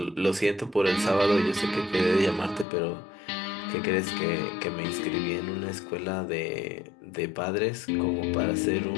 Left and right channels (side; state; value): right; drops out; at 2.7 s